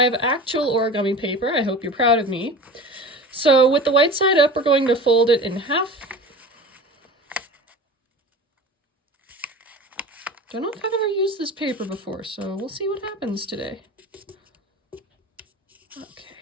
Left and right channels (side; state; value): both; normal; correlation 0.35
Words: have actual origami paper. I hope you're proud of me. So with the white side up, we're going to fold it in half. Don't know if I've ever used this paper before, so we'll see what happens today. Okay,